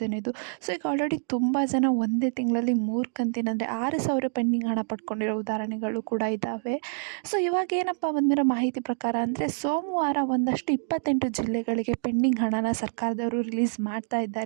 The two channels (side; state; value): left; silent; digital silence